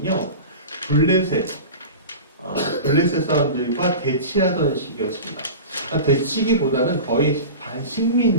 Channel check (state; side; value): inverted; both; correlation -0.32